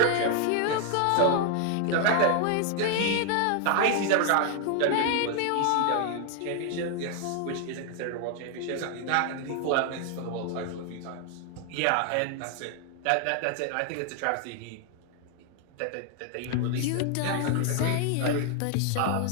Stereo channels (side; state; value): both; different; correlation 0.00